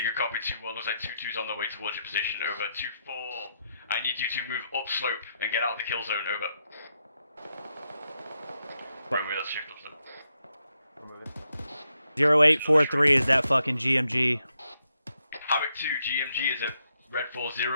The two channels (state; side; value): inverted; both; correlation -0.81